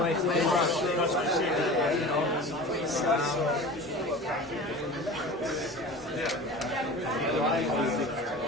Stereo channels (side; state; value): both; normal; correlation 0.36